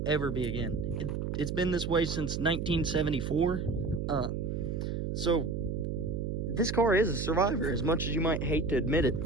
ever be again. It's been this way since 1974. So, this car is a survivor, as much as you might hate to admit it.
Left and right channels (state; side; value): noise; right; hum, 2 dB below the sound